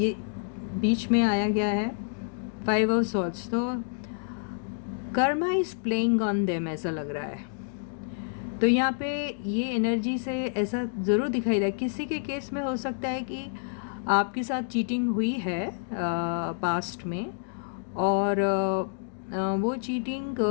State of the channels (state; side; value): silent; right; digital silence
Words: बीच में आया गया है 5 ऑफ सॉर्ड्स। तो Karma is playing on them ऐसा लग रहा है। तो यहाँ पे ये एनर्जी से ऐसा ज़रूर दिखाई दे, किसी के केस में हो सकता है कि आपके साथ चीटिंग हुई है पास्ट में, और वो चीटिंग